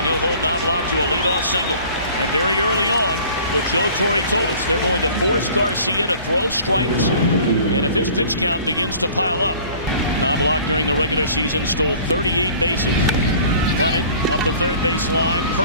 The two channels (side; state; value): both; inverted; correlation -0.48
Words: he'll hold Knobloch to a leadoff single. And very early on, what Joe Torre told us, they're going to force Garcia to throw strikes, and if his pitch count begins to pile up. Knobloch during the regular season stole 38 bases. Bunted up the third base line